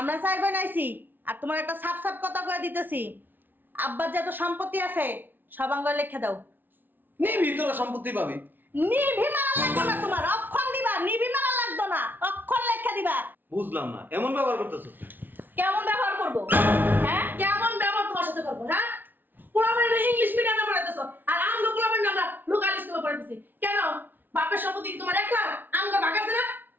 চাই বানাইছি, আর তোমার একটা সাপ সাপ কথা কয়ে দিতেছি। আব্বার যত সম্পত্তি আছে সব আঙ্গুলে লিখে দাও। নিবি তোরা সম্পত্তি পাবি। নিভি মারা লাগতো না তোমার, অক্ষর দিবা। নিভি মারা লাগতো না, অক্ষর লেখা দিবা। বুঝলাম না, এমন ব্যবহার করতেছো। কেমন ব্যবহার করব? হ্যাঁ কেমন ব্যবহার তোমার সাথে করবো? হ্যাঁ, পোলাপান ইংলিশ মিডিয়ামে পড়াইতেছো, আর আমরা পোলাপান আমরা লোকাল স্কুলে পড়াইতেছি কেন? বাপের সম্পত্তি কি তোমার একলা? আমগো ভাগ আছে না?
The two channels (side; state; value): left; late; 0.091 ms